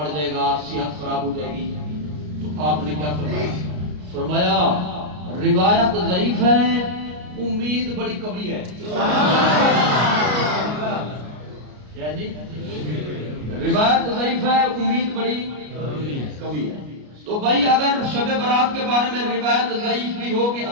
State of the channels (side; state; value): left; late; 33 ms